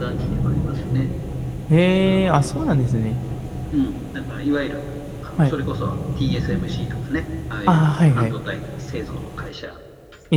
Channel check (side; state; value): both; identical; correlation 1.00